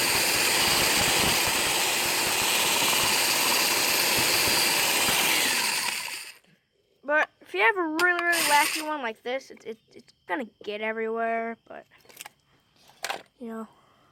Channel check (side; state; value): both; identical; correlation 1.00